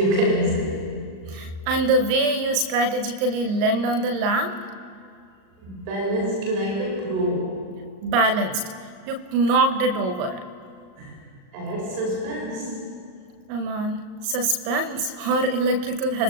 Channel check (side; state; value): left; late; 39 ms